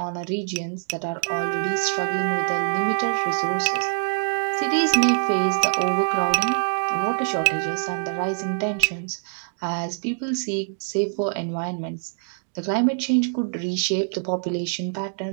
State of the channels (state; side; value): silent; left; digital silence